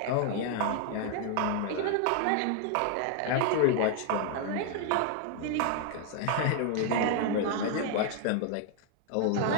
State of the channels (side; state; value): both; different; correlation 0.00